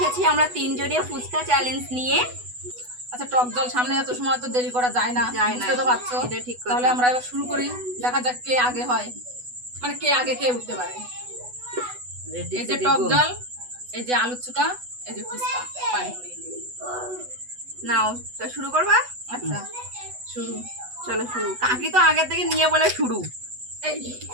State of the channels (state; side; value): late; left; 8.1 ms